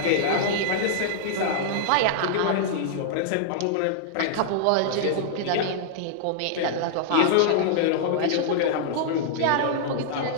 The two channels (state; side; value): different; both; correlation -0.01